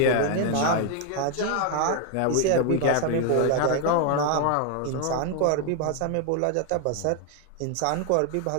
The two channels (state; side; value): different; both; correlation 0.00